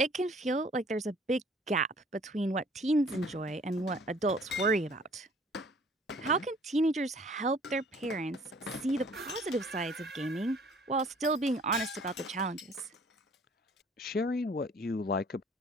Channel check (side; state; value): both; normal; correlation 0.55